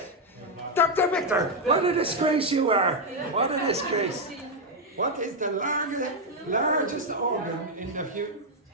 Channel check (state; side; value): normal; both; correlation 0.01